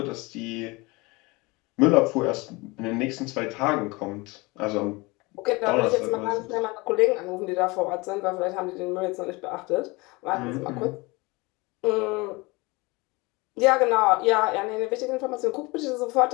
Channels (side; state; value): right; quieter; 24.6 dB